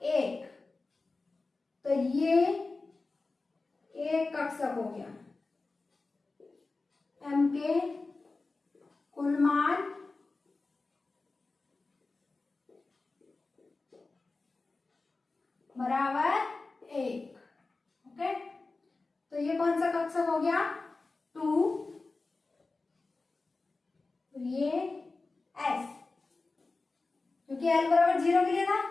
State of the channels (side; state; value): right; quieter; 3.6 dB